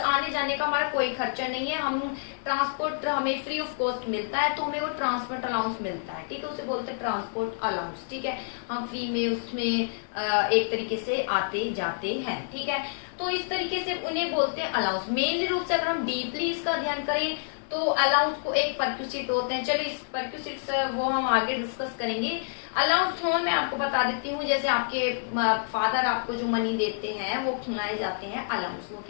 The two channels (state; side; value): silent; right; digital silence